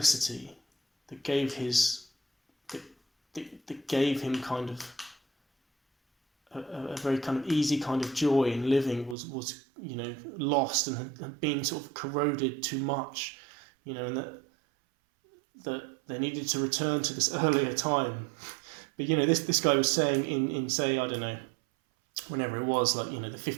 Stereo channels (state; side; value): drops out; left; at 9.2 s